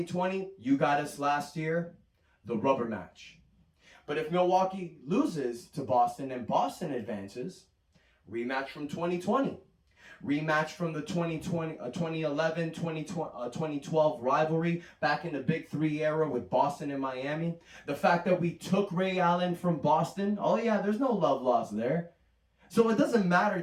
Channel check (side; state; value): both; identical; correlation 1.00